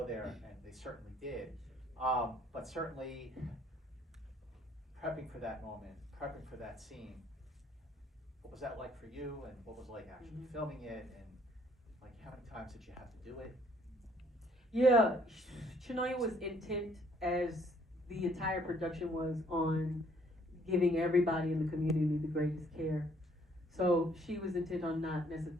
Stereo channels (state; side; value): normal; both; correlation 0.64